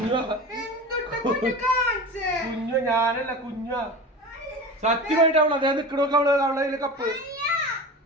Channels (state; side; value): normal; both; correlation 0.31